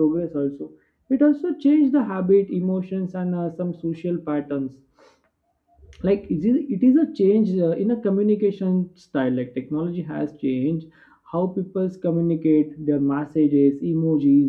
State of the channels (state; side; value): identical; both; correlation 1.00